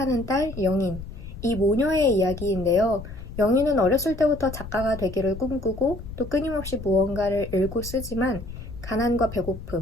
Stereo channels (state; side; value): noise; left; rumble, 11 dB below the sound